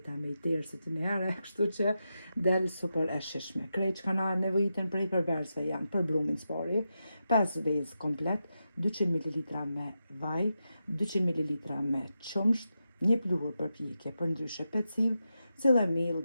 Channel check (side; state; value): both; inverted; correlation -0.88